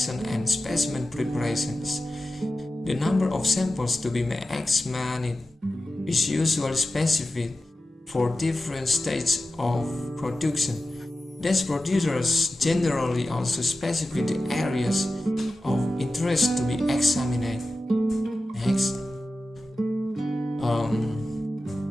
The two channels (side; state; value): both; normal; correlation 0.94